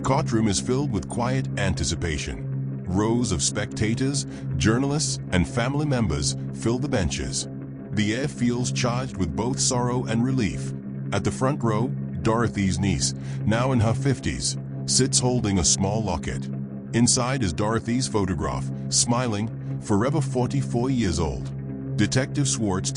is filled with quiet anticipation. Rows of spectators, journalists, and family members fill the benches. The air feels charged with both sorrow and relief. At the front row, Dorothy's niece, now in her 50s, sits holding a small locket. Inside is Dorothy's photograph, smiling, forever 44 years old. Detective Swartz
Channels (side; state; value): both; identical; correlation 1.00